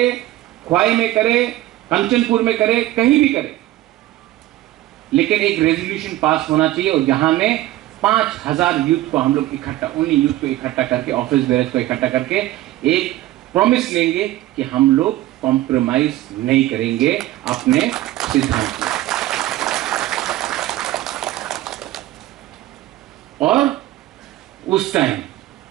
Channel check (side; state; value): left; quieter; 15.6 dB